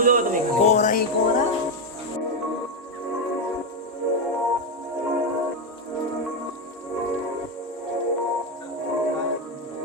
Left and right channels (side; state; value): both; normal; correlation 0.07